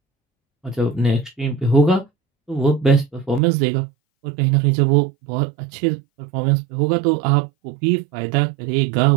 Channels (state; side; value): drops out; left; at 3.4 s